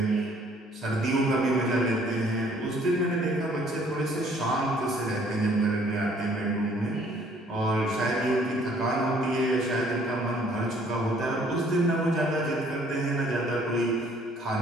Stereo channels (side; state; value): both; normal; correlation 0.60